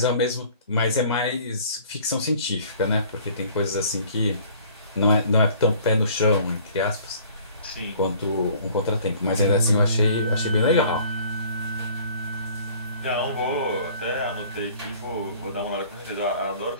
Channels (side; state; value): both; inverted; correlation -0.52